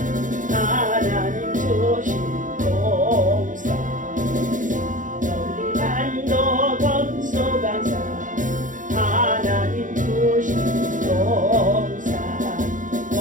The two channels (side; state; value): left; late; 0.37 ms